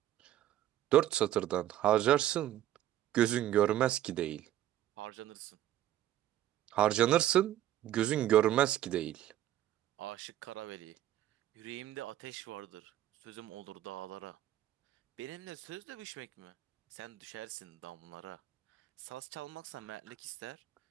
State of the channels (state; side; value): quieter; left; 12.8 dB